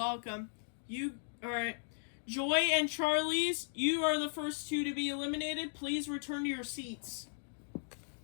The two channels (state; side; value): silent; right; digital silence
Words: Alright. Joy and Charlie's, you are the first two to be eliminated. Please return to your seats.